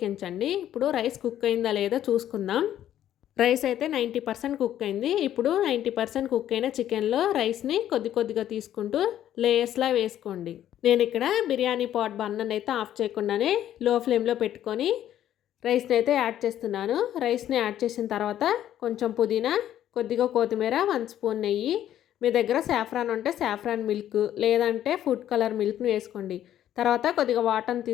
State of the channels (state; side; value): quieter; right; 11.5 dB